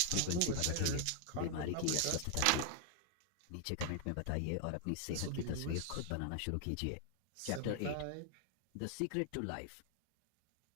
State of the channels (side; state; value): both; different; correlation 0.00